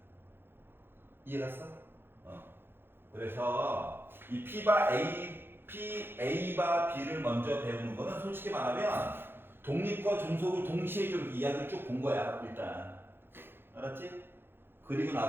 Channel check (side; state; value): left; late; 0.10 ms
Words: 이해갔어? 그래서 이 P바 A바 B를 먼저 배우는 거는 솔직히 말하면 독립과 종속을 동시에 좀 이야기를 쭉 본 거야. 일단 알았지? 그리고